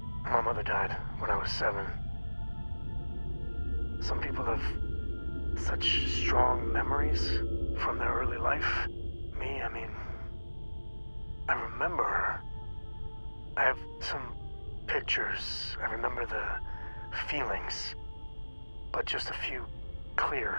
My mother died when I was 7. Some people have such strong memories from their early life. Me, I mean, I remember her. I have some pictures. I remember the feelings, but just a few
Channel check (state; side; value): inverted; both; correlation -1.00